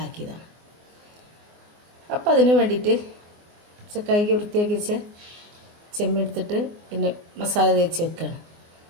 അപ്പോൾ അതിന് വേണ്ടിയിട്ട് കൈക്ക് വൃത്തിയാക്കി വെച്ച് ചെമ്മീൻ എടുത്തിട്ട് പിന്നെ മസാല തേച്ച് വെക്കുകയാണ്.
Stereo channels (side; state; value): left; late; 24 ms